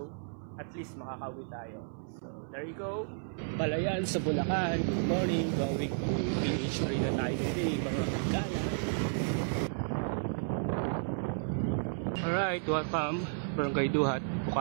At least makakauwi tayo. So, there you go. Balayan sa Bulacan. Good morning. Going to PH Arena tayo today, mga kagala. Alright, welcome. Barangay Duhat,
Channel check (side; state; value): left; silent; 56 dB below the other